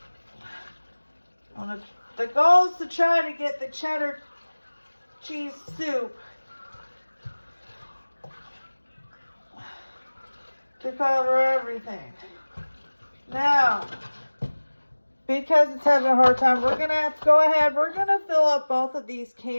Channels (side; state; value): both; inverted; correlation -1.00